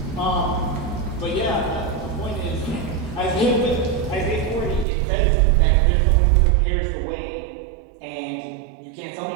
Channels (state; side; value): drops out; left; at 4.9 s